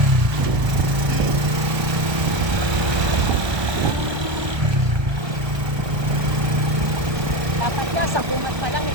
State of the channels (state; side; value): late; left; 1.2 ms